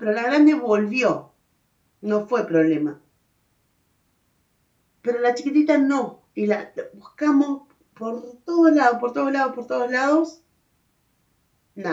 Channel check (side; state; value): both; identical; correlation 1.00